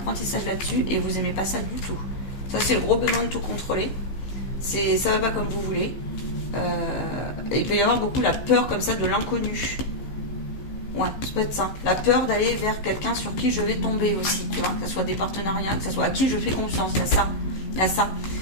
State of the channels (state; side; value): late; right; 15 ms